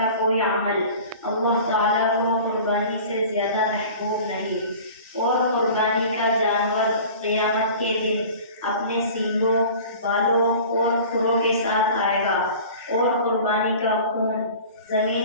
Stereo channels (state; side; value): inverted; both; correlation -0.42